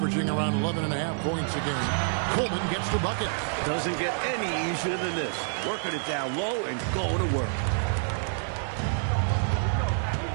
around 11.5 points a game. Coleman gets the bucket. Doesn't get any easier than this. Working it down low and going to work.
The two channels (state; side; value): silent; left; 60 dB below the other